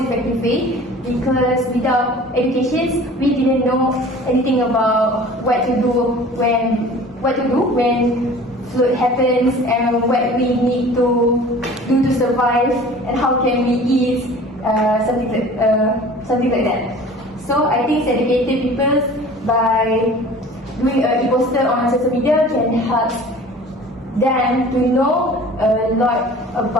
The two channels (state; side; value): normal; both; correlation 0.44